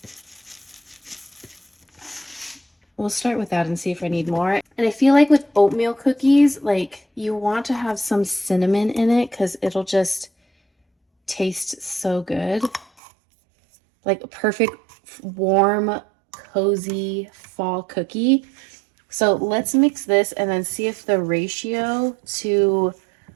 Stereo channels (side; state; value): left; drops out; at 12.9 s